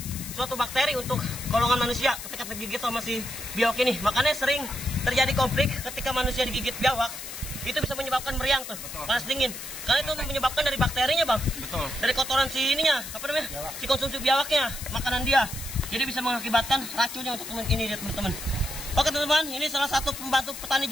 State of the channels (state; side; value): noise; left; hiss, 10 dB below the sound